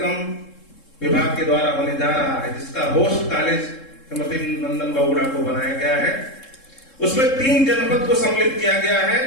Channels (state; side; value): late; right; 3.7 ms